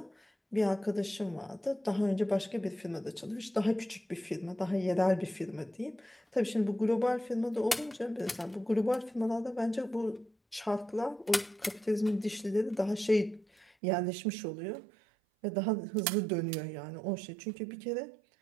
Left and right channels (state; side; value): drops out; left; at 13.7 s